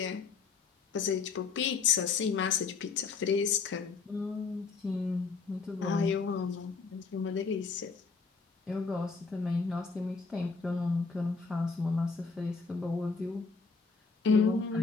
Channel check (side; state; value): right; quieter; 4.8 dB